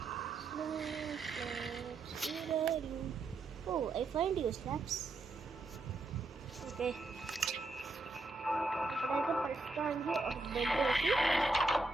Oh, I find you slabs. Okay. ఇప్పుడైతే ప్రస్తుతానికి ఒక బెడ్ వేసి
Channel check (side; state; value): left; quieter; 3.3 dB